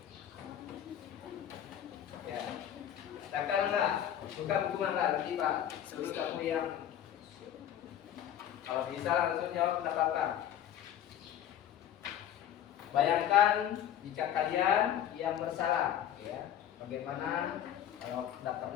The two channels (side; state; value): right; quieter; 10.5 dB